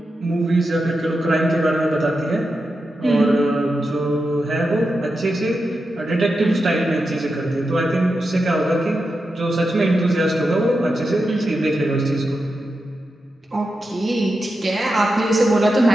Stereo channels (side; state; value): both; normal; correlation 0.89